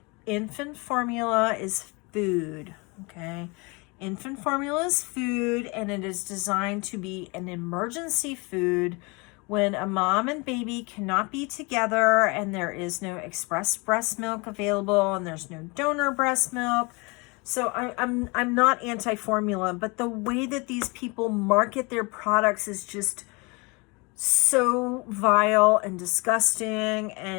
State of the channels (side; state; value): right; quieter; 28.3 dB